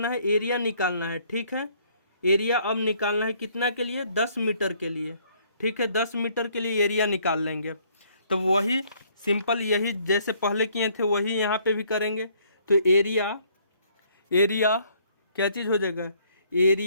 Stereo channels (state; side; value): inverted; both; correlation -0.64